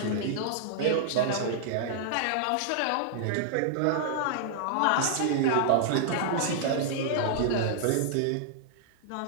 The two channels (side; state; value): both; different; correlation -0.01